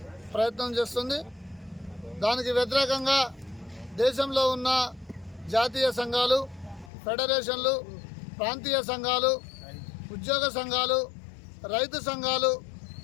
ప్రయత్నం చేస్తుంది. దానికి వ్యతిరేకంగా దేశంలో ఉన్న జాతీయ సంఘాలు, ఫెడరేషన్లు, ప్రాంతీయ సంఘాలు, ఉద్యోగ సంఘాలు, రైతు సంఘాలు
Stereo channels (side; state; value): right; drops out; at 6.9 s